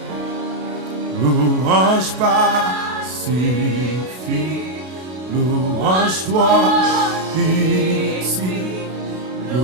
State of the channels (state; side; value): late; left; 32 ms